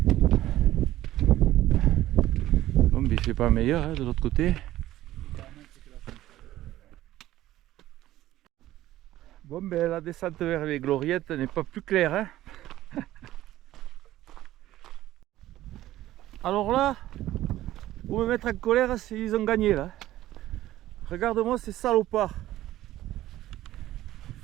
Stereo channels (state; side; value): quieter; left; 14.7 dB